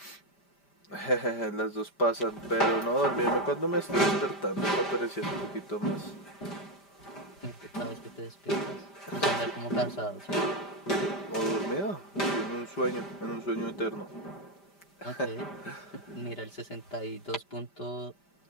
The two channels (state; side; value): late; right; 5.0 ms